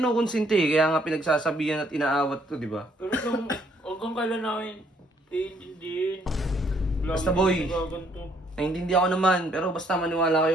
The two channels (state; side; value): normal; both; correlation 0.67